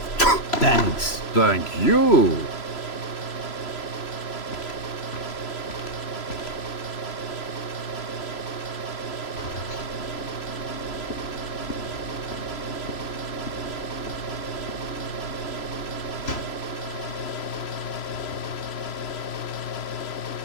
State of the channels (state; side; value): late; right; 3.0 ms